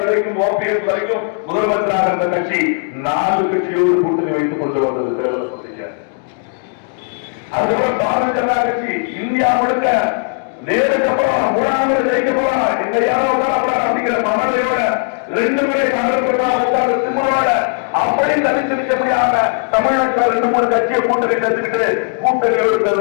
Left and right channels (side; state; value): right; silent; 59 dB below the other